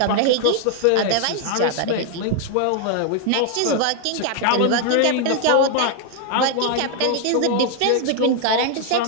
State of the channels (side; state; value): both; different; correlation 0.00